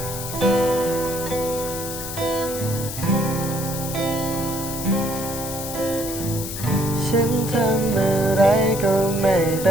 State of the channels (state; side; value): noise; left; hiss, 7 dB below the sound